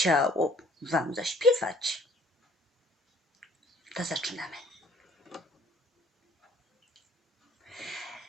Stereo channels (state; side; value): normal; both; correlation 0.56